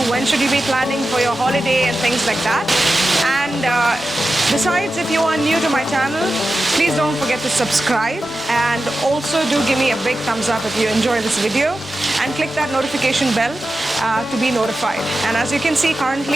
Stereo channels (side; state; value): both; normal; correlation 0.92